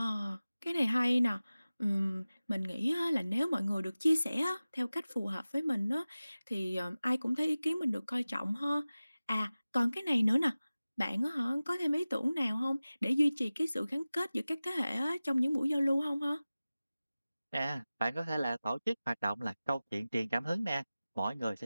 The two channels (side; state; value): both; inverted; correlation -0.97